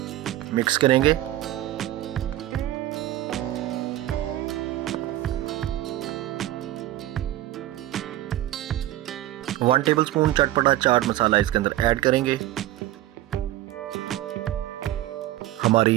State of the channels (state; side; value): quieter; left; 14.6 dB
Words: मिक्स करेंगे। वन टेबलस्पून चटपटा चाट मसाला इसके अंदर ऐड करेंगे।